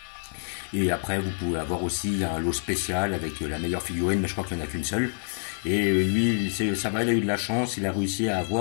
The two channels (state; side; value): silent; right; 60 dB below the other